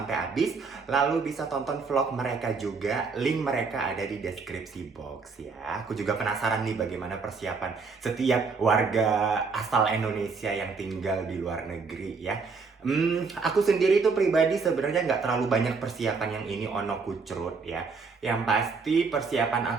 habis, lalu bisa tonton vlog mereka juga. Link mereka ada di deskripsi box ya. Aku juga penasaran nih bagaimana persiapan setiap warga asal Indonesia yang tinggal di luar negeri ya. Aku sendiri tuh pribadi sebenarnya nggak terlalu banyak persiapan yang ini ono kucrut ya. Yang pasti persiapan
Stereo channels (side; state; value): left; quieter; 4.8 dB